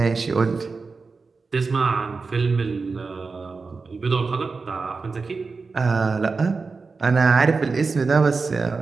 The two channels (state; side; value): quieter; left; 4.4 dB